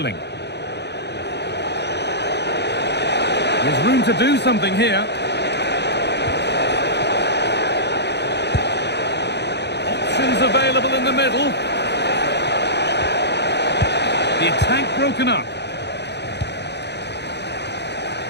There's room to do something here. Options available in the middle. The attack broken up.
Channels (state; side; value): late; right; 0.50 ms